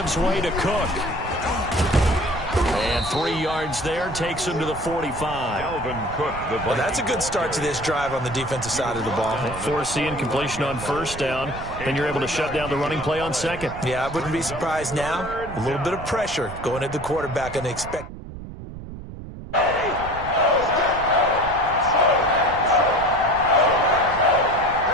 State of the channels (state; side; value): noise; right; rumble, 12 dB below the sound